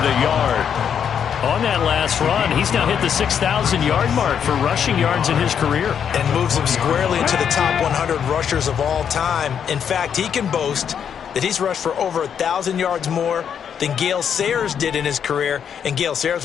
a yard. On that last run, he's now hit the 6,000-yard mark for rushing yards in his career. And moves him squarely into the top 100 rushers of all time. In fact, he can boast that he's rushed for over 1,000 yards more than Gale Sayers did in his career. And Gale Sayers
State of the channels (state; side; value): quieter; right; 8.0 dB